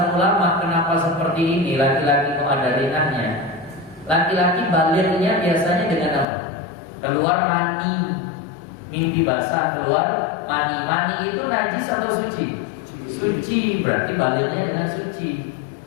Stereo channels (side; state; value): right; drops out; at 6.2 s